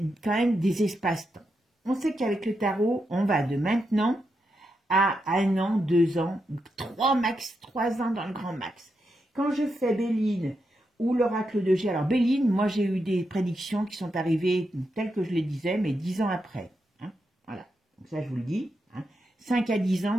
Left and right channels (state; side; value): normal; both; correlation 0.85